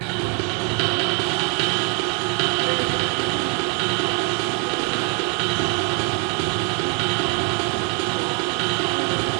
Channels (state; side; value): quieter; left; 34.6 dB